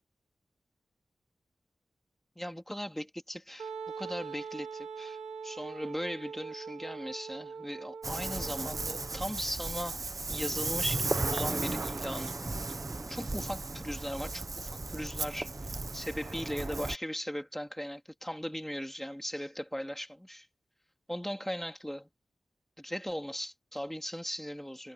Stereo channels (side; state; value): both; normal; correlation 0.90